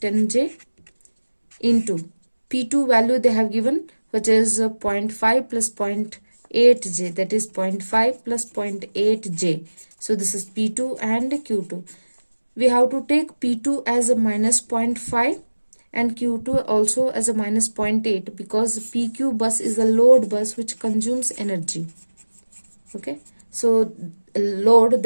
into P2 value they have given, which is 0.5 plus 0.8j, that is 0.5 plus 0.8j. So this is P2 and Q2. We have to take P2 as a minus 0.5 and Q2 also as a minus 0.8, because PQ bus is a load bus which consumes energy. Okay, so load,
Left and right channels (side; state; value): both; inverted; correlation -1.00